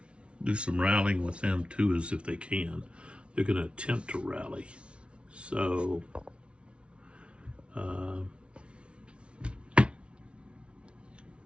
do some rallying with them too, as if they can. They're going to attempt to rally. So,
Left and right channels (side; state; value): left; late; 0.059 ms